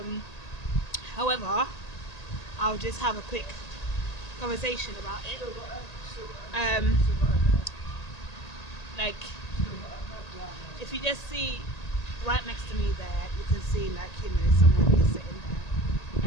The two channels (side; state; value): right; late; 1.8 ms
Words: However, I'll just have a quick conversation about it. Um, like if you just see right next to me there, you can see someone is sitting